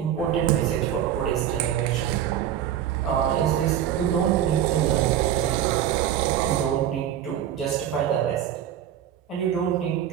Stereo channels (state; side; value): quieter; left; 10.5 dB